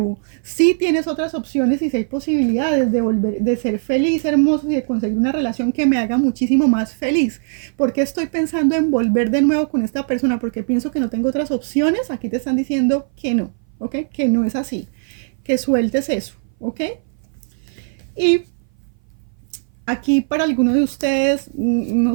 Sí tienes otras opciones y sí hay posibilidades de volver, de ser feliz, hermoso y de conseguir una relación que me haga muchísimo más feliz. ¿Por qué estoy pensando en volver de nuevo con esta persona? Porque pienso que no tengo otras opciones. Aquí te están diciendo que no, ¿ok? Que no es así. Que sueltes eso, ¿ok? Y aquí para alguno de ustedes, no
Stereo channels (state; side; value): silent; left; 59 dB below the other